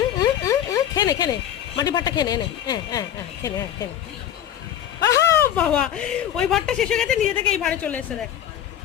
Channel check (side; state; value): right; quieter; 10.6 dB